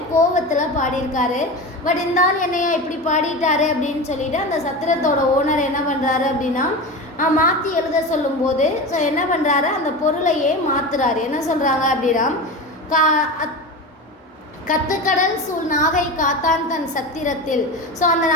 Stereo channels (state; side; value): normal; both; correlation 0.26